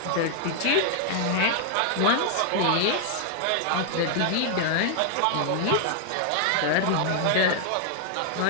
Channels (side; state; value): both; different; correlation 0.00